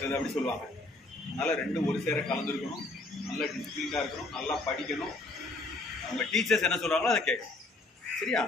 அப்படி சொல்லுவாங்க. அதனால் ரெண்டும் ஒரு சேர கலந்துருக்கணும். நல்லா டிசிப்ளினாக இருக்கணும், நல்லா படிக்கணும். அவங்க டீச்சர்ஸ் என்ன சொல்கிறாங்களோ அதை கேட்கணும். சரியா?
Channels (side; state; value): right; quieter; 3.0 dB